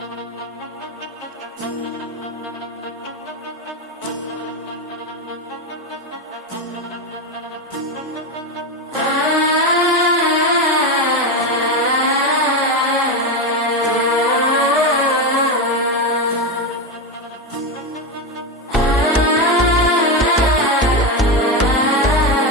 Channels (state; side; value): normal; both; correlation 0.13